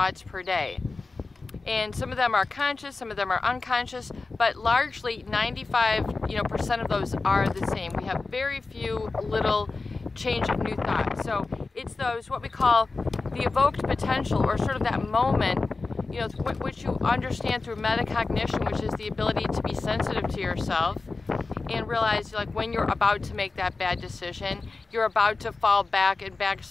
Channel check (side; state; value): right; quieter; 3.8 dB